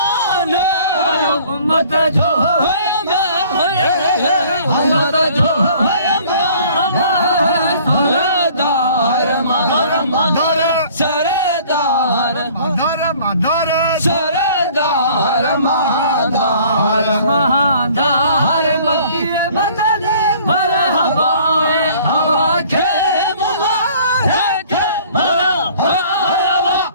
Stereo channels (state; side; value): inverted; both; correlation -0.53